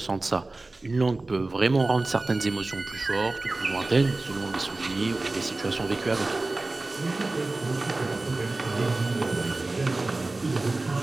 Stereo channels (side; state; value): left; quieter; 3.2 dB